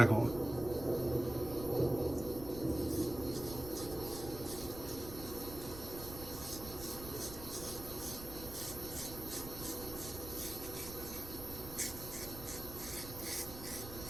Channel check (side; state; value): right; noise; rumble, 11 dB below the sound